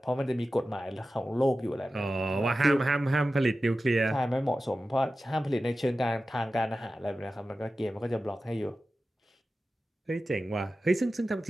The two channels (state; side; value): normal; both; correlation 0.94